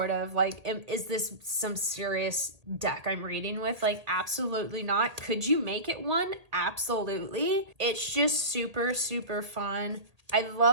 of like, is this some serious deck I'm reading with? Like, absolutely not. Could you make it one? Absolutely. It's just super, super fun. I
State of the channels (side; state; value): left; late; 1.8 ms